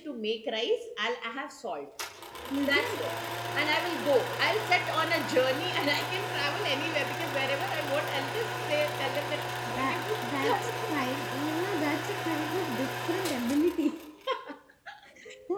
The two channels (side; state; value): both; identical; correlation 1.00